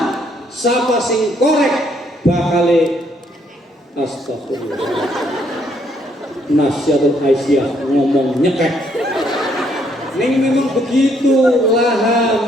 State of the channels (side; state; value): both; normal; correlation 0.69